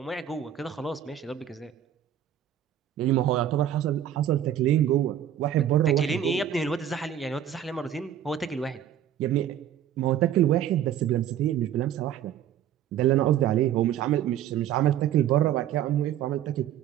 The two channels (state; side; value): quieter; left; 10.3 dB